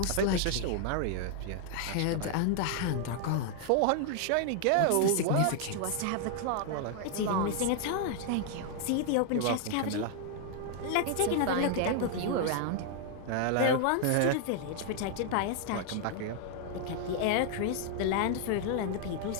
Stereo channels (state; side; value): different; both; correlation 0.00